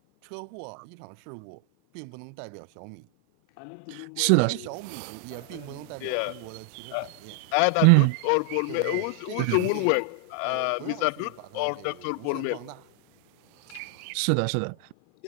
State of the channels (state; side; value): different; both; correlation 0.00